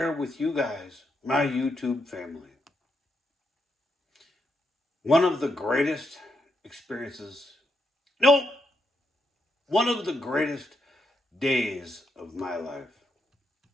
with you guys, my YouTube family, one of the greatest experiences, no, one of the greatest days of my life.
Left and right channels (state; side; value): normal; both; correlation 0.80